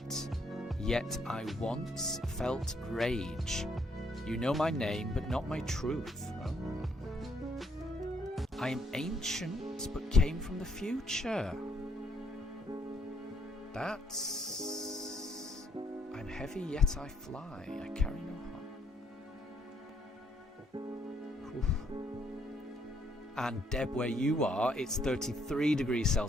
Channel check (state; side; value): normal; both; correlation 0.70